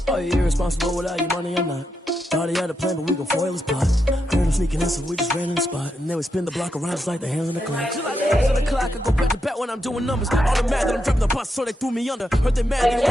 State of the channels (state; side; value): normal; both; correlation 0.84